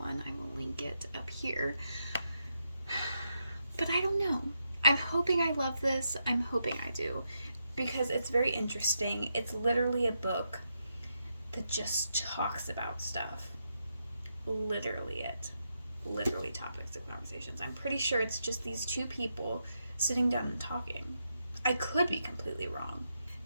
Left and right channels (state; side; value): inverted; both; correlation -0.83